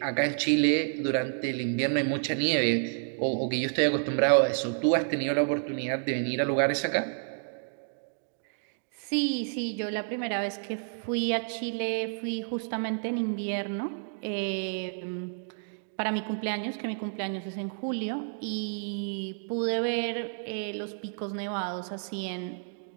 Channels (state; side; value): silent; left; digital silence